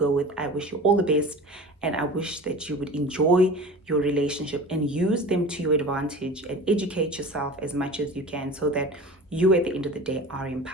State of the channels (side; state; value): both; normal; correlation 0.36